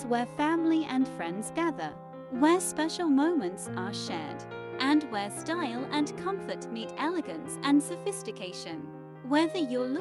where family and friends gather, where special moments are shared, and where style and comfort meet elegance and sophistication. Whether you're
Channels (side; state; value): both; identical; correlation 1.00